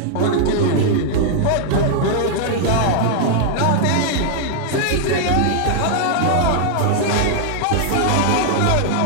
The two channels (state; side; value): different; both; correlation -0.01